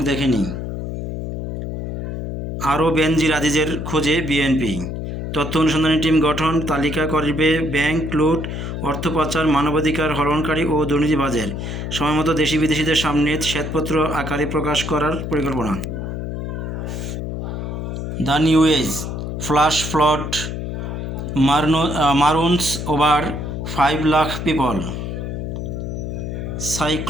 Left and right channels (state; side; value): noise; left; hum, 5 dB below the sound